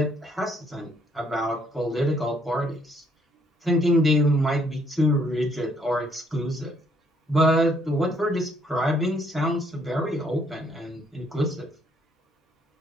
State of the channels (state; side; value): normal; both; correlation 0.68